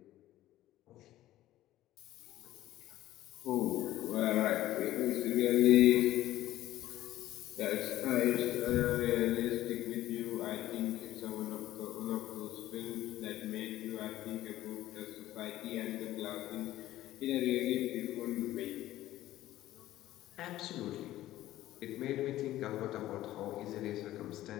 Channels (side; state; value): right; quieter; 14.7 dB